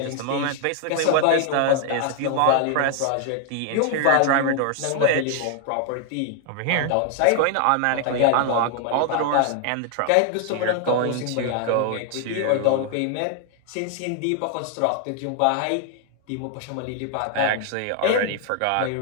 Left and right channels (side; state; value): both; different; correlation 0.00